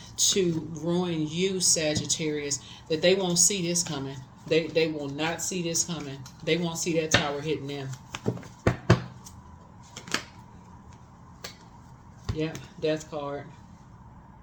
to ruin you, Sagittarius, that they won't see this coming. They will not see this coming. They won't see that tower hitting them. Yeah, death card.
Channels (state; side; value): identical; both; correlation 1.00